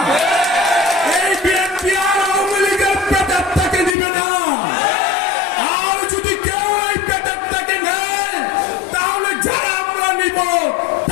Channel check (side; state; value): right; drops out; at 4.0 s